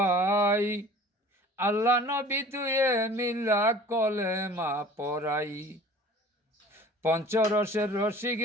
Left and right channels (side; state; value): both; normal; correlation 0.45